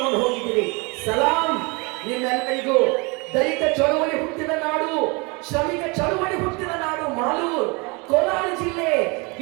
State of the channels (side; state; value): left; quieter; 28.6 dB